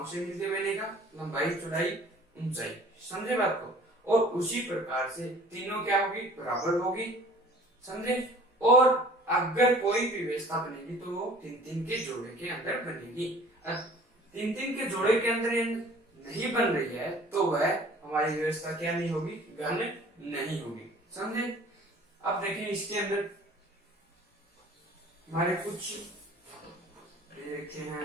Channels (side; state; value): both; normal; correlation 0.49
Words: से मिलते बनेगा, लंबाई, चौड़ाई, ऊंचाई। समझे बात को। और उसी प्रकार से तीनों क्या होगी, बराबर होगी। समझे। और अगर कोई भी व्यवस्था बनेगी तो वो 3-3 के जोड़े के अंदर बनेगी। 3-3 के जोड़े के अंदर नहीं बन रही है तो वह हमारी व्यवस्था क्या नहीं होगी, घन नहीं होगी। समझे। अब देखें इसके अंदर हमारे कुछ रखे